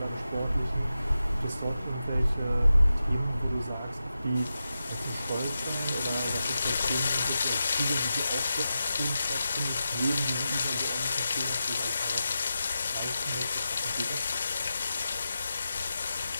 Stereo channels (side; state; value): both; inverted; correlation -0.90